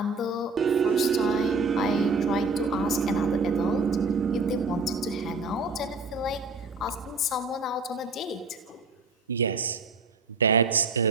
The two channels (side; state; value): left; quieter; 3.6 dB